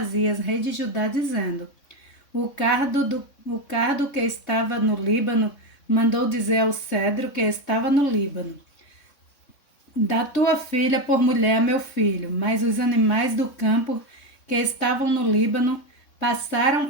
rei de Judá, dizendo: o cardo que estava no Líbano mandou dizer ao cedro que estava no Líbano: dá tua filha por mulher a meu filho. Mas os animais do campo que estavam no Líbano passaram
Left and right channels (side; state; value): right; late; 3.6 ms